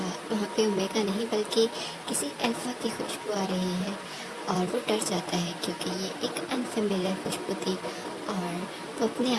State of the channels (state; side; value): identical; both; correlation 1.00